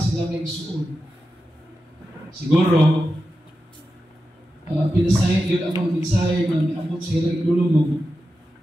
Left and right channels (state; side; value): normal; both; correlation 0.91